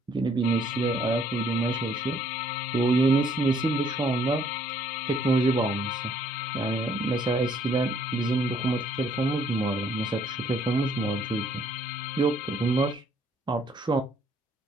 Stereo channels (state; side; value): normal; both; correlation 0.64